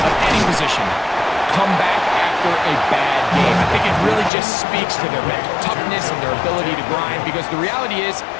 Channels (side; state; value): right; drops out; at 4.3 s